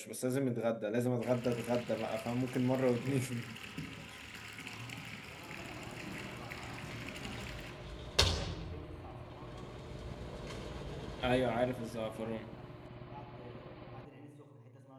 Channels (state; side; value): identical; both; correlation 1.00